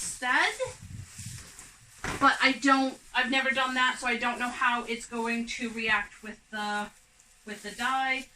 but I've never done that, so I don't know how it's going to react with the dye.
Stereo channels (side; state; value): both; identical; correlation 1.00